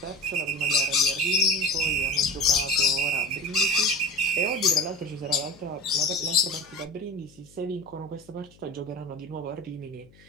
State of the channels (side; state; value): left; noise; hum, 26 dB below the sound